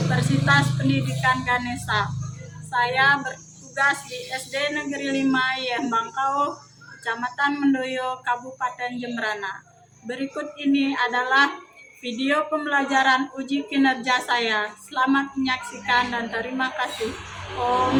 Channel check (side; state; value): both; identical; correlation 1.00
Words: Pendidikan Ganesha. Saya bertugas di SD Negeri 5 Yembangkau, Kecamatan Mendoyo, Kabupaten Jembrana. Berikut ini adalah video pembelajaran uji kinerja saya. Selamat menyaksikan dan terima kasih.